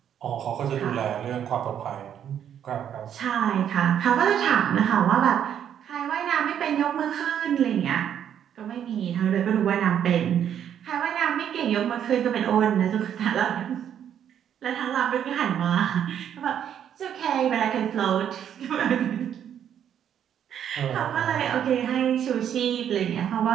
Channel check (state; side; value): quieter; left; 9.4 dB